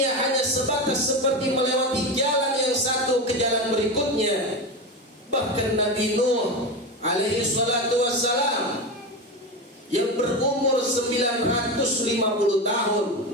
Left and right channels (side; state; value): both; normal; correlation 0.20